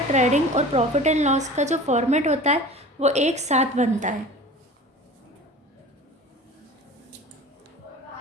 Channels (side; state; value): both; normal; correlation 0.39